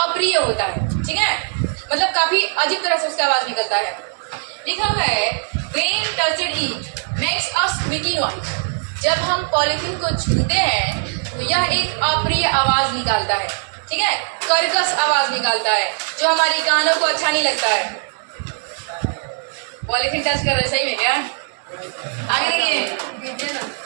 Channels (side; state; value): left; silent; 66 dB below the other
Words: होता है, ठीक है, मतलब काफी अजीब तरह से उसका आवाज निकलता है। लिखा हुआ है when touched it makes a squeaky noise, जब हम पॉलिथीन को छूते हैं तो यह एक अप्रिय आवाज निकालता है, ठीक है, कर्कश आवाज निकालता है जो हमारी कानों को अच्छा नहीं लगता है। पॉलिथीन टच कर रहे, सही में क्या? आगे देखिए,